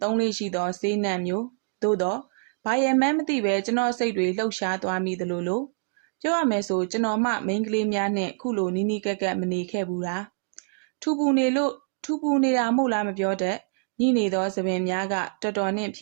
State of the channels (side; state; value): left; silent; digital silence